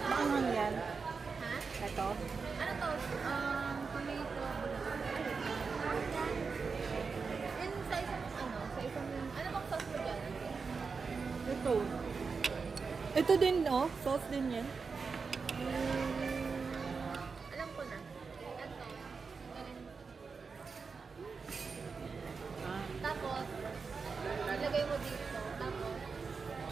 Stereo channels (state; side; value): quieter; left; 5.0 dB